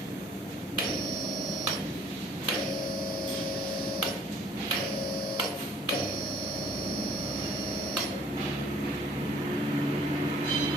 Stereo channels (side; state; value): both; normal; correlation 0.57